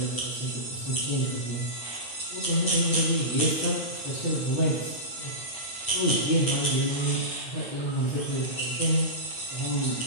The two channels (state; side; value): late; right; 8.3 ms